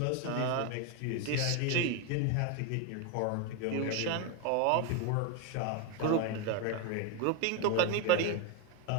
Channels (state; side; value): different; both; correlation 0.02